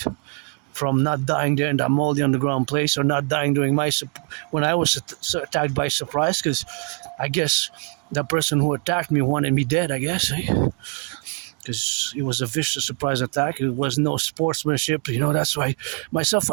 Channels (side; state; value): left; quieter; 38.2 dB